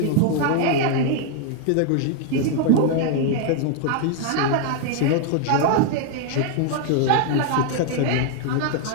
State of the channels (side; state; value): both; different; correlation 0.00